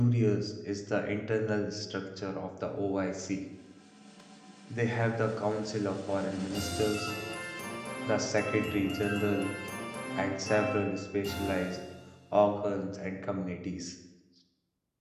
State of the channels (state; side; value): identical; both; correlation 1.00